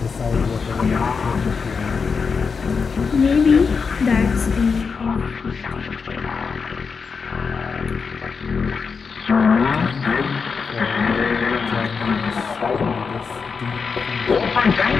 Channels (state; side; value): quieter; right; 5.4 dB